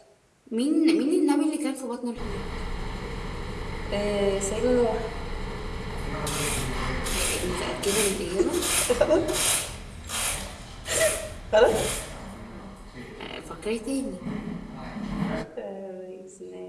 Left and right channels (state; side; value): identical; both; correlation 1.00